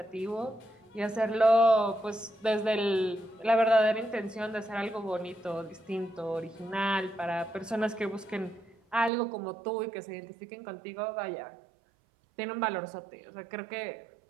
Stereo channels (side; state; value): left; drops out; at 9.1 s